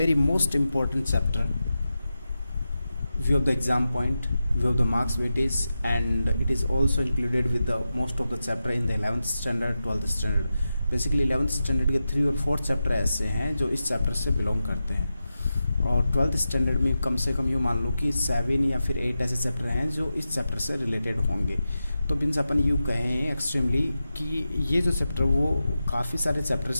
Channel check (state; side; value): inverted; both; correlation -0.91